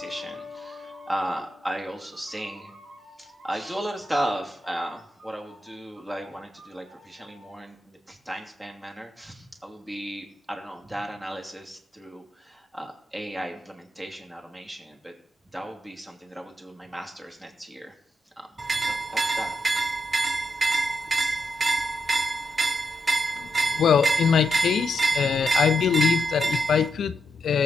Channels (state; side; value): normal; both; correlation 0.84